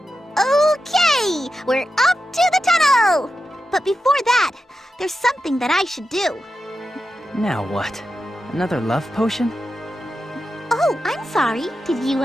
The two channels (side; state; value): both; normal; correlation 0.90